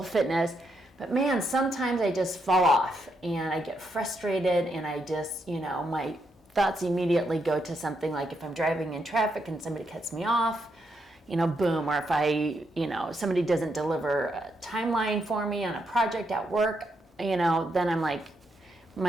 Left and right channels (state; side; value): normal; both; correlation 0.79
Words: fitness. But man, sometimes I just fall off and I get frustrated, and I just, my thoughts immediately go to something like if I'm driving in traffic and somebody cuts me off, boom, or if somebody doesn't deliver a timeline for me on a project at work, then I'm like,